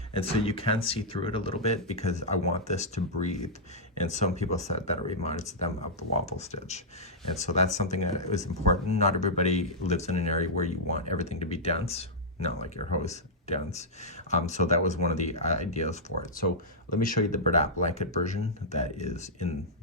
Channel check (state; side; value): normal; both; correlation -0.09